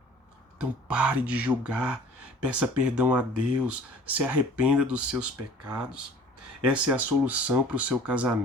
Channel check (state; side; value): normal; both; correlation 0.49